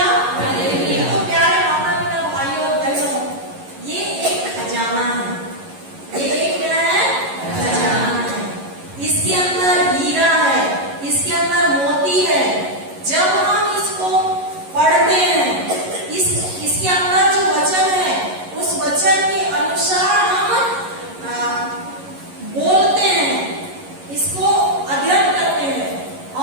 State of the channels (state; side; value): late; left; 11 ms